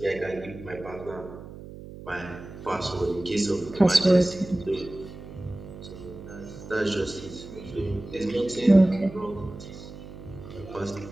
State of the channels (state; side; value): noise; right; hum, 14 dB below the sound